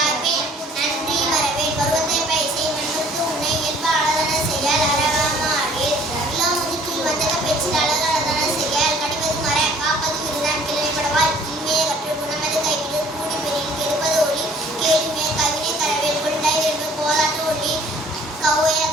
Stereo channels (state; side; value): normal; both; correlation 0.55